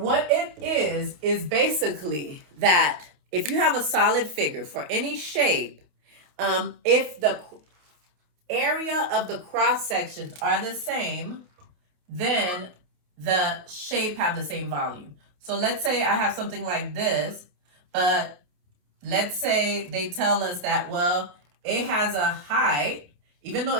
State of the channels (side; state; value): left; late; 28 ms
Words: it is basically that if you have a solid figure for any shape, if the area of the cross sections are the same, then the shape have the same volume. So let's say I have something like this, but let's say they tell us that, well, it has a height, even though